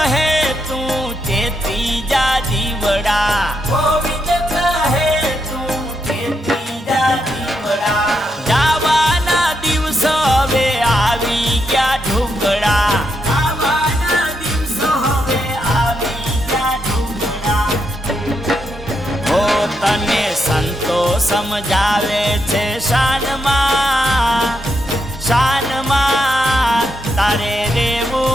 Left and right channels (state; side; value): normal; both; correlation 0.81